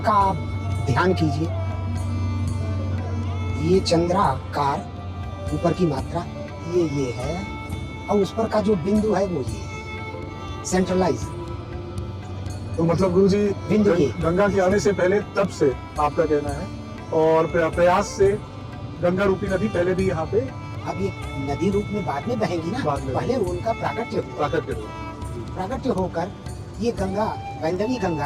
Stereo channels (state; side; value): identical; both; correlation 1.00